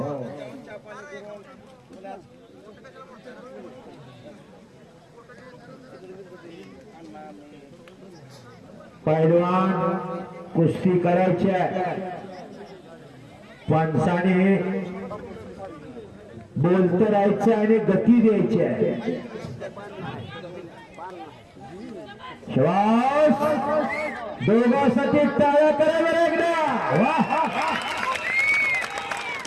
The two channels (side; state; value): both; identical; correlation 1.00